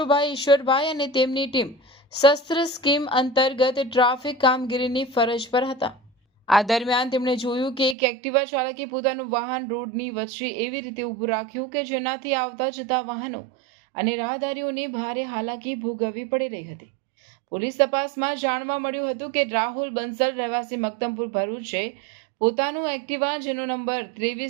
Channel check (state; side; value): drops out; left; at 8.0 s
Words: ઈશ્વરભાઈ અને તેમની ટીમ શસ્ત્ર સ્કીમ અંતર્ગત ટ્રાફિક કામગીરીની ફરજ પર હતા. આ દરમિયાન તેમણે જોયું કે એક એક્ટિવા ચાલકે પોતાનું વાહન રોડની વચ્ચે એવી રીતે ઊભું રાખ્યું કે જેનાથી આવતા જતા વાહનો અને રાહદારીઓને ભારે હાલાકી ભોગવવી પડી રહી હતી. પોલીસ તપાસમાં જાણવા મળ્યું હતું કે રાહુલ બંસલ રહેવાસી મક્તમપુર ભરૂચે પોતાનું એક્ટિવા જેનો નંબર